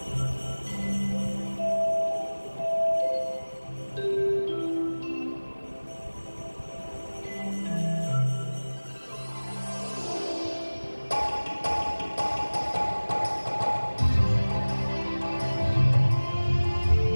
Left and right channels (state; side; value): inverted; both; correlation -1.00